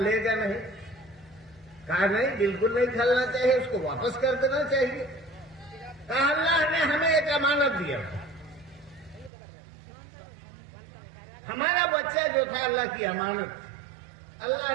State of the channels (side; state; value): left; drops out; at 9.3 s